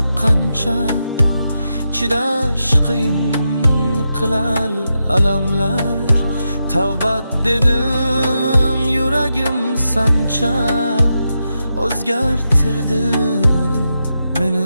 qancha, chidash qiyin qilar alamlar. Tavbat dedim yuragim sancha, o'zgartirdi meni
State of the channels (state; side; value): inverted; both; correlation -0.86